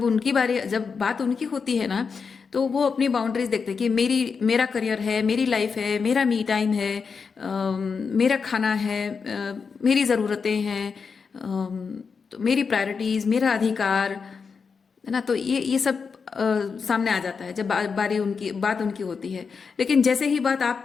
बात उनकी होती है ना, तो वो अपनी बाउंड्रीज देखते हैं कि मेरा करियर है, मेरी लाइफ है, मेरा मी टाइम है, मेरा खाना है, मेरी ज़रूरतें हैं, तो मेरी प्रायोरिटीज़, मेरा अधिकार है ना। तो ये सब सामने आ जाता है जब बात उनकी होती है। लेकिन जैसे ही बात आप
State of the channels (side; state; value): right; quieter; 5.5 dB